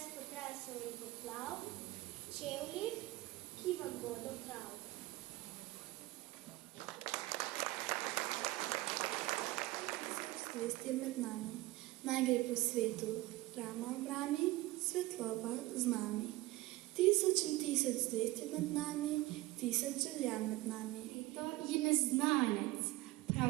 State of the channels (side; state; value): left; quieter; 19.2 dB